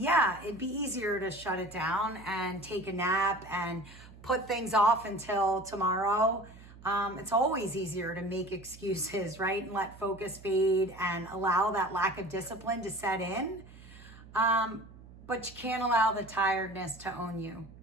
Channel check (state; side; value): noise; right; hum, 19 dB below the sound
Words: it'd be easier to shut it down and take a nap and put things off until tomorrow. It's always easier to make excuses, right? And let focus fade and allow that lack of discipline to set in. But you can't allow the tiredness to own you,